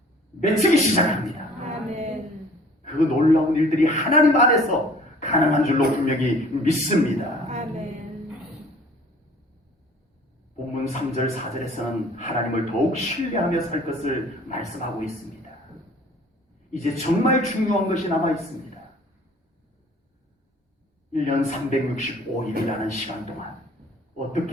맺히기 시작합니다. 아멘. 그 놀라운 일들이 하나님 안에서 가능한 줄로 분명히 믿습니다. 아멘. 본문 3절 4절에서는 하나님을 더욱 신뢰하며 살 것을 말씀하고 있습니다. 이제 정말 중요한 것이 남아 있습니다. 1년 365일이라는 시간 동안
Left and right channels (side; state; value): both; normal; correlation 0.51